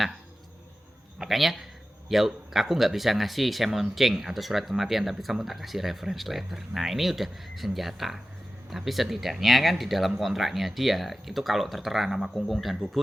makanya ya aku nggak bisa ngasih semonceng atau surat kematian, tapi kamu tak kasih reference letter. Nah ini udah senjata. Tapi setidaknya kan di dalam kontraknya dia itu kalau tertera nama Kungkung dan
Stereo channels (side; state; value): both; normal; correlation 0.94